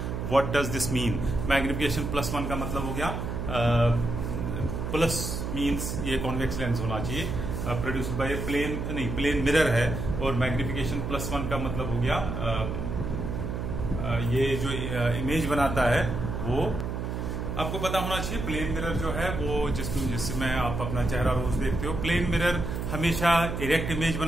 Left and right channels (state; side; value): noise; right; hum, 3 dB below the sound